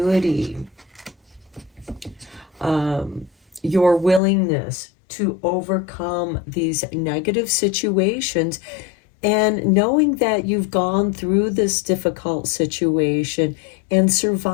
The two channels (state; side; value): drops out; right; at 4.2 s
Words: your willingness to overcome these negative situations, and knowing that you've gone through this difficult situation and